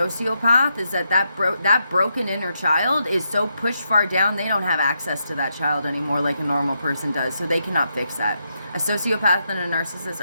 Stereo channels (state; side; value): inverted; both; correlation -0.82